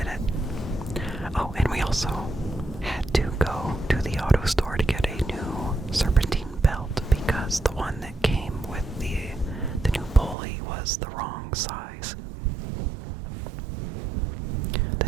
was the wrong size. The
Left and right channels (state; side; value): drops out; left; at 10.4 s